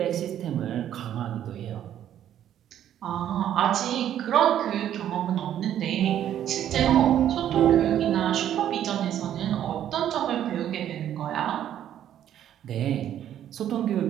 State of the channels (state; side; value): quieter; left; 10.8 dB